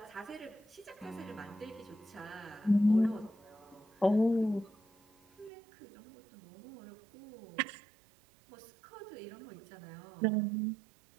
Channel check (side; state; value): left; drops out; at 5.5 s